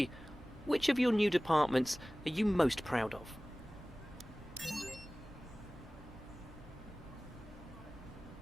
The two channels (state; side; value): normal; both; correlation 0.98